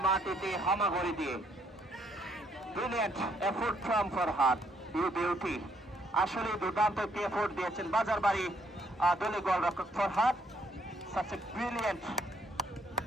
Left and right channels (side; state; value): both; normal; correlation 0.69